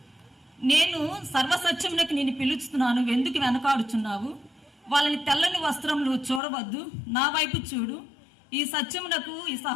నేను సర్వసత్యమునకు నేను పిలుస్తున్నాను, ఎందుకు వెనకాడుచున్నావు, వాళ్ళని తెల్లని వస్త్రములు చూడవద్దు, నా వైపు చూడు, ఈ సత్యమునకు ఈ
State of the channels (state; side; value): drops out; right; at 6.4 s